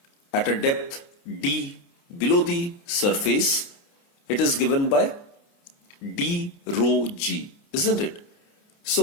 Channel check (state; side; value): late; right; 29 ms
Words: at a depth d below the surface, it is given by d rho g, isn't it?